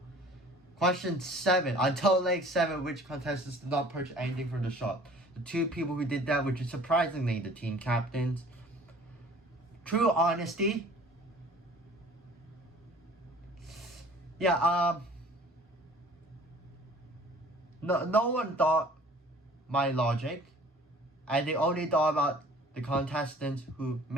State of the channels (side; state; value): both; normal; correlation 0.49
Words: Question 7. Until leg 7, which contestants did not purchase anything from the shop? The 2 people who did that, which is surprisingly the team captains. True honesty. Yeah, no one thought my logic, and they only thought about the contestants who